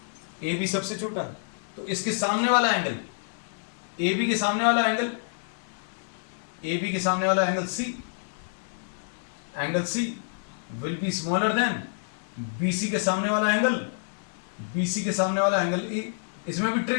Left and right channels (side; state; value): right; silent; digital silence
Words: ए बी सबसे छोटा है, तो इसके सामने वाला एंगल, ए बी के सामने वाला एंगल, ए बी के सामने वाला angle C will be smaller than B C के सामने वाला एंगल, बी सी के सामने वाला एंगल ए। इसमें भी